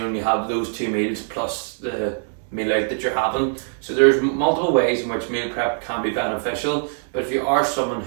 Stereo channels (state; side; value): silent; left; digital silence